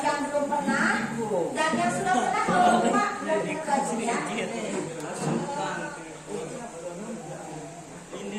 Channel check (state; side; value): identical; both; correlation 1.00